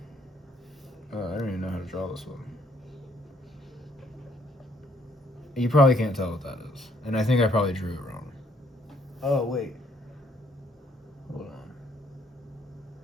I don't even know how to draw this one. You probably can't tell what that is. And I think I probably drew it wrong. Oh, wait. Hold on.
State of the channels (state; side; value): normal; both; correlation 0.68